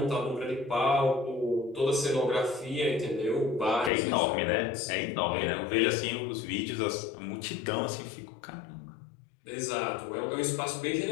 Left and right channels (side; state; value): right; drops out; at 3.9 s